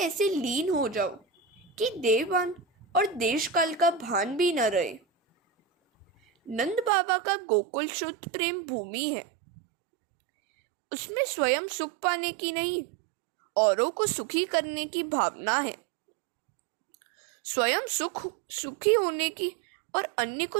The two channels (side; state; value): left; drops out; at 6.9 s